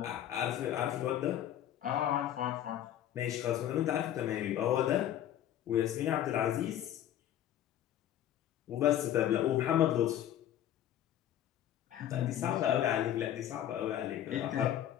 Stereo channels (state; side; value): quieter; right; 11.4 dB